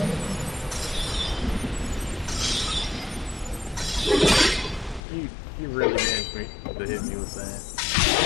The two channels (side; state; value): right; drops out; at 5.0 s